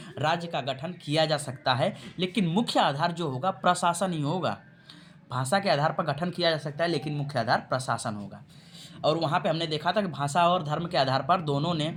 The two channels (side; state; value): both; identical; correlation 1.00